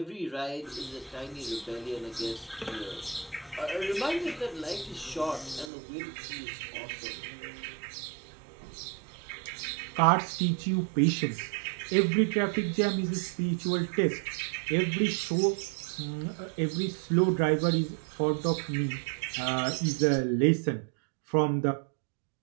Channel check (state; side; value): drops out; left; at 5.7 s